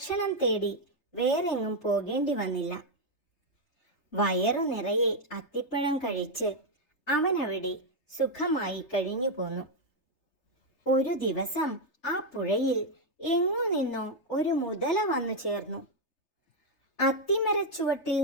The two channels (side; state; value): right; late; 3.3 ms